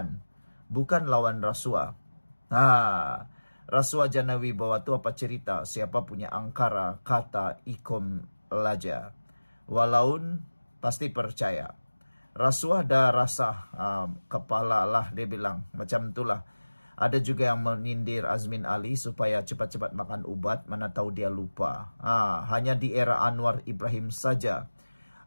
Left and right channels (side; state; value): both; inverted; correlation -1.00